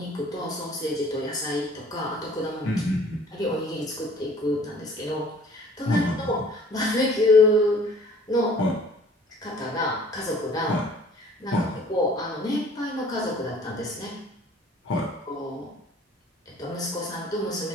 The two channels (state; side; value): normal; both; correlation 0.52